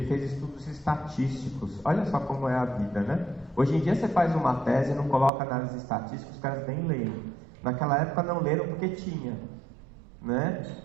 fez estudos estatísticos. Olha só como é a vida, né? Hoje em dia você faz uma tese e não coloca análise estatística, os caras nem leem. Naquela época não leram porque tinha, né?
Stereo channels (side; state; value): left; drops out; at 5.3 s